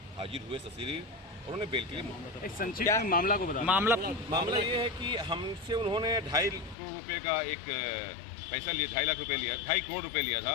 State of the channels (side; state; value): right; drops out; at 6.8 s